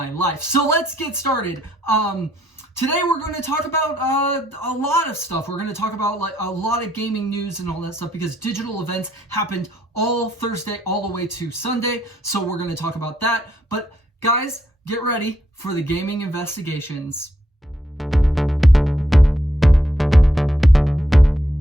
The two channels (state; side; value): normal; both; correlation 0.74